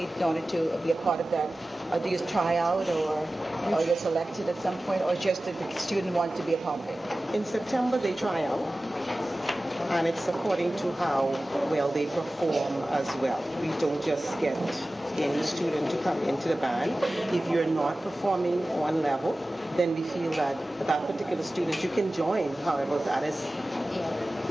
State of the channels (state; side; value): normal; both; correlation 0.96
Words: in order to be a part of that? Do you try out or you're selected at some point, or just that the student want to be a part of it? In September they try out, and it's according to how well they perform as well. We don't just get any student to come into the band. If you're not performing on level, then we feel that that particular student, you can join. However, that is,